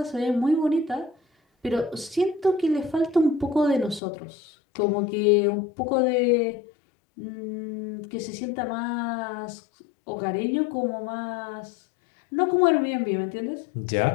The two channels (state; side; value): drops out; right; at 4.0 s